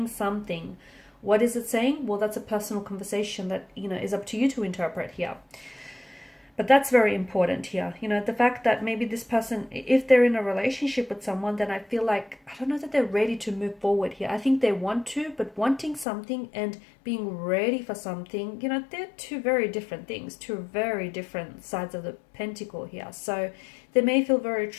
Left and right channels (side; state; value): right; drops out; at 16.1 s